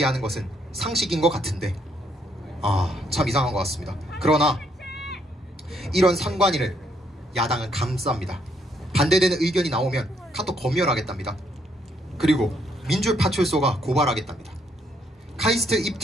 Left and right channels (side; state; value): both; normal; correlation 0.72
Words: 것은 상식인 것 같은데 참 이상한 것 같습니다. 그러나 이런 선관위를 야당은 감쌉니다. 반대되는 의견이 나오면 카톡 검열하겠답니다. 그리고 민주파출소가 고발하겠답니다. 카이스트